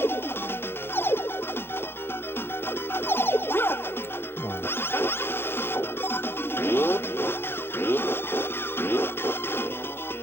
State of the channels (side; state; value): right; late; 0.11 ms